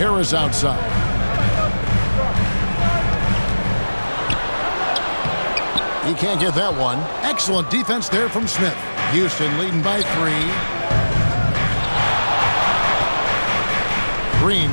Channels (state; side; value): inverted; both; correlation -1.00